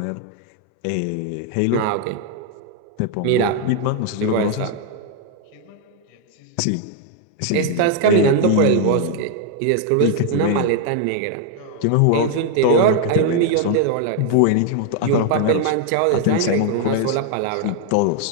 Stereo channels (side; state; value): both; different; correlation 0.00